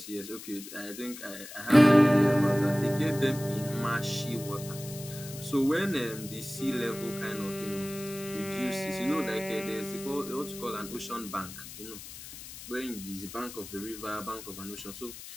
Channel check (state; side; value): noise; left; hiss, 13 dB below the sound